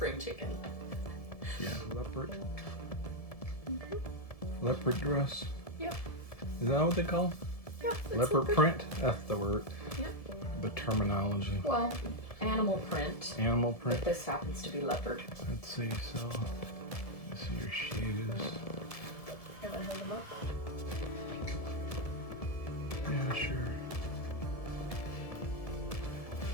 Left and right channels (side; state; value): right; late; 1.7 ms